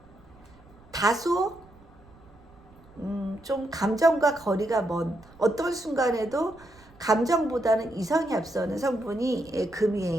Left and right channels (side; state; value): right; noise; rumble, 26 dB below the sound